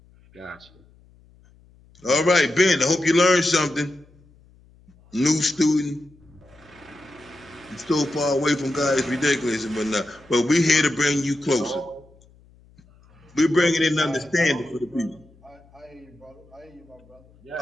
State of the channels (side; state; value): left; noise; hum, 28 dB below the sound